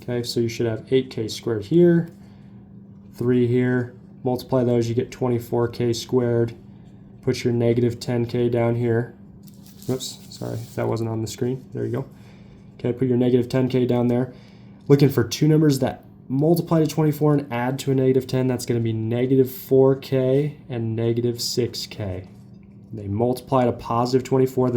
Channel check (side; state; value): both; identical; correlation 1.00